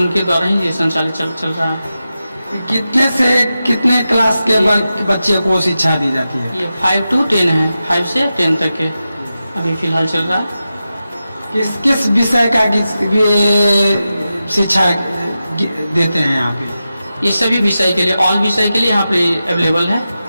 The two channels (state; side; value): inverted; both; correlation -0.91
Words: द्वारा ही ये संचालित चल रहा है। कितने से कितने क्लास के बच्चे को शिक्षा दी जाती है? ये 5 to 10 है, 5 से 10 तक के अभी फिलहाल चल रहा है। किस किस विषय का शिक्षा देते हैं यहाँ पे? ये सभी विषय के लिए, ऑल विषय के लिए यहाँ पे अवेलेबल है।